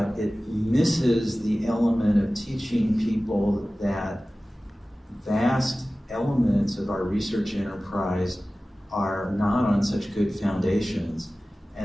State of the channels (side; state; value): both; normal; correlation 0.97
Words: it misses the element of teaching people that vast elements of our research enterprise are not on such good foundations,